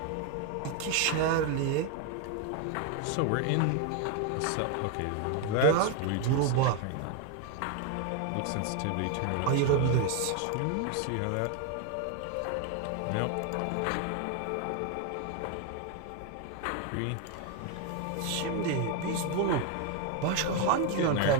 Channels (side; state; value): both; different; correlation 0.01